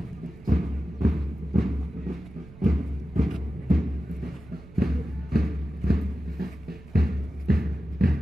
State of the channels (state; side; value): noise; right; rumble, 20 dB below the sound